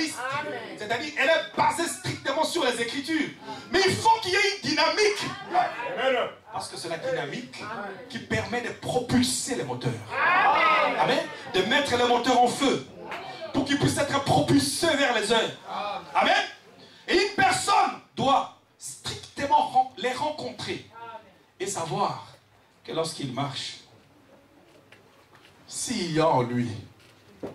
c'est-à-dire elle est basée strictement sur les Écritures, mais il faut qu'il y ait une dynamique. Parce que c'est la dynamique qui permet de propulser les moteurs. Amen. De mettre les moteurs en feu pour qu'ils puissent être propulsés vers les heures. Amen. Et une personne doit strictement les rencontrer et savoir que lorsqu'il marche, s'il y a en lui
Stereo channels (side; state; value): both; identical; correlation 1.00